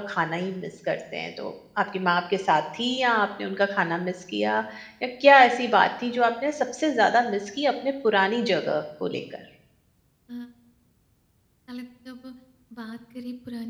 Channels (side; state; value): both; identical; correlation 1.00